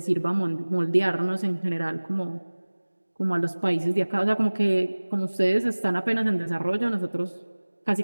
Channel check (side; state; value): both; inverted; correlation -1.00